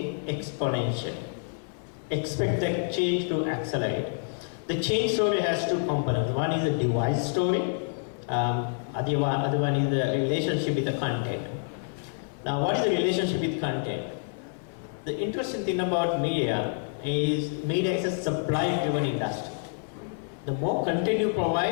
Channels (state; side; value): silent; right; 59 dB below the other